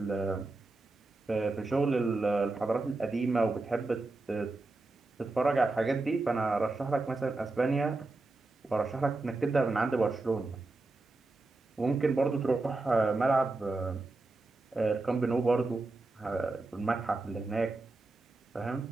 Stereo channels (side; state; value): left; quieter; 3.2 dB